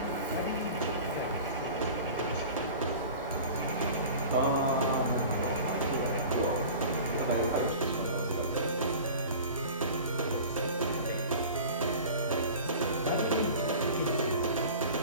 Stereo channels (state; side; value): inverted; both; correlation -0.39